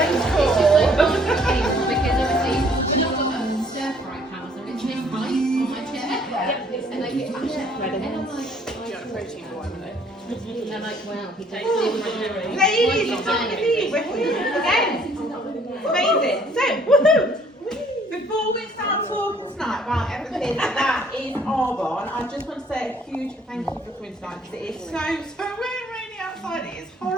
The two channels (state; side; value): normal; both; correlation 0.60